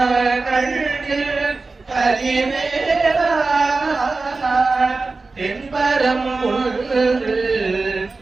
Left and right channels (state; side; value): quieter; left; 3.8 dB